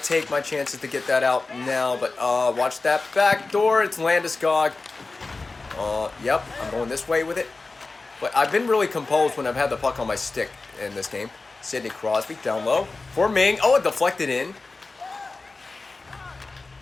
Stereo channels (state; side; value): quieter; right; 3.6 dB